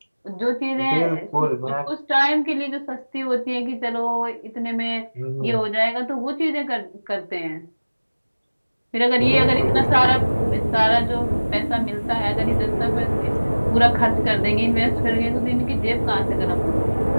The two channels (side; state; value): both; inverted; correlation -1.00